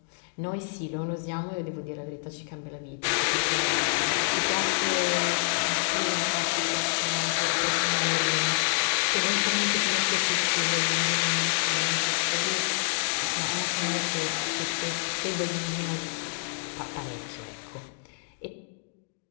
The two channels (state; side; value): silent; right; digital silence